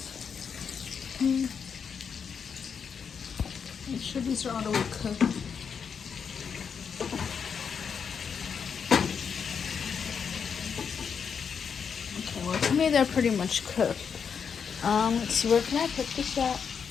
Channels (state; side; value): quieter; right; 6.6 dB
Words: Make sure these are all the way cooked. Okay, well to me they're pretty much cooked. Let's see, where can I put this at?